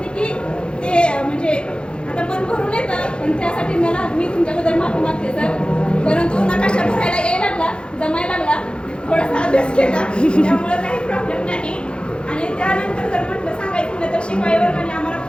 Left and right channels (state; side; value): late; right; 0.054 ms